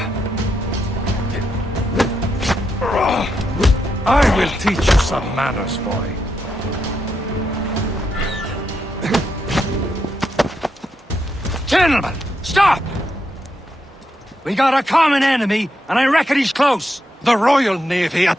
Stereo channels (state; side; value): normal; both; correlation 0.82